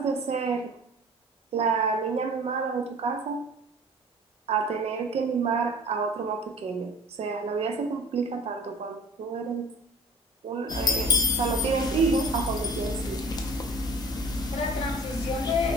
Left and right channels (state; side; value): normal; both; correlation 0.44